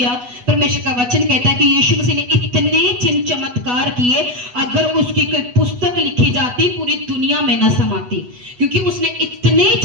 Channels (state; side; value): late; left; 8.1 ms